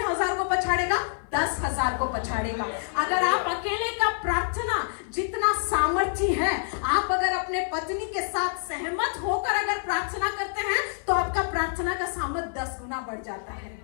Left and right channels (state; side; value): silent; right; 60 dB below the other